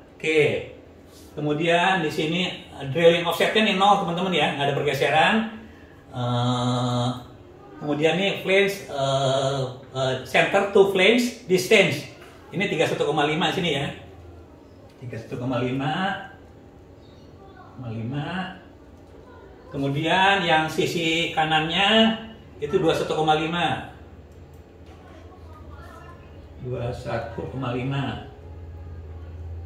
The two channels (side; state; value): both; identical; correlation 1.00